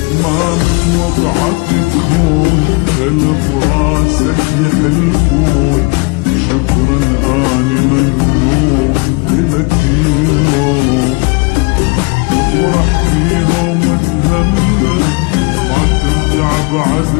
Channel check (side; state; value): right; quieter; 29.9 dB